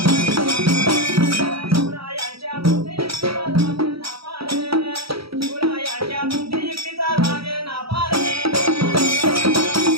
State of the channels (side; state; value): left; late; 0.76 ms